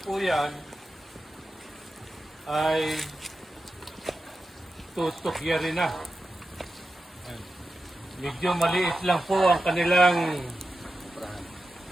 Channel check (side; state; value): both; normal; correlation 0.91